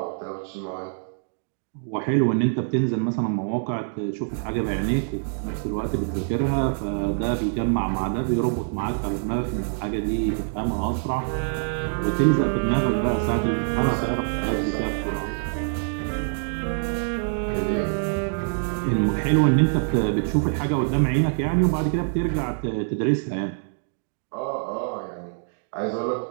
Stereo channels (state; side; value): silent; left; digital silence